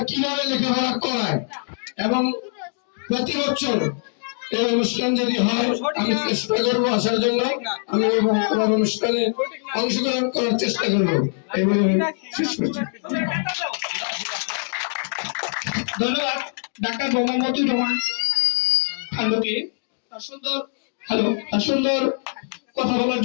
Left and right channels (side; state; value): right; silent; 61 dB below the other